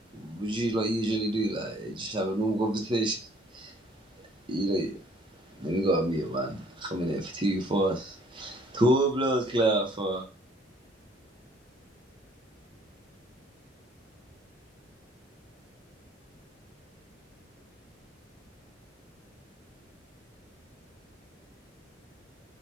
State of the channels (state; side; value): normal; both; correlation 0.60